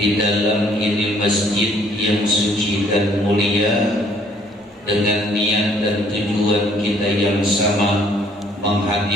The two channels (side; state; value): both; normal; correlation 0.62